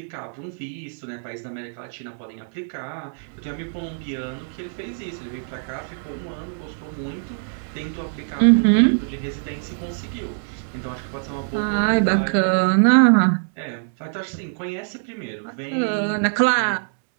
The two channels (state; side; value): silent; left; digital silence